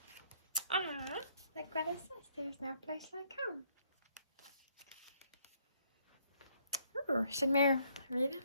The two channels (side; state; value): both; inverted; correlation -0.68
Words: Ah, like Greta says, there's no place like home. Ooh, should Meur read it?